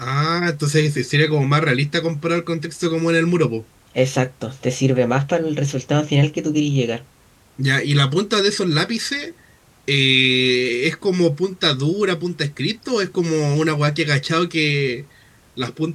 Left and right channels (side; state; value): both; identical; correlation 1.00